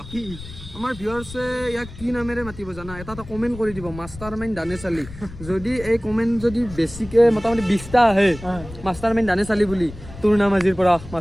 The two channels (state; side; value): noise; left; rumble, 15 dB below the sound